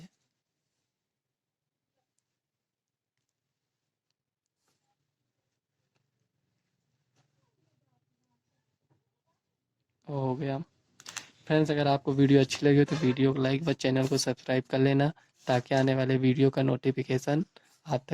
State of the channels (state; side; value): identical; both; correlation 1.00